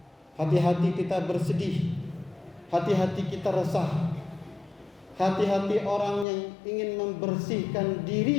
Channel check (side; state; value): right; drops out; at 6.2 s